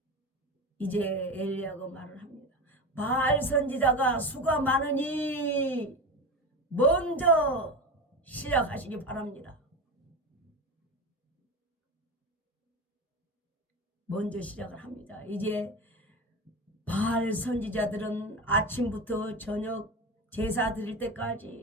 이제 엘리야가 말을 합니다. 바알 선지자가 수가 많으니 먼저 시작하시기 바랍니다. 먼저 시작을 합니다. 이제 바알 선지자들은 아침부터 저녁 제사 드릴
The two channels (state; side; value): normal; both; correlation 0.24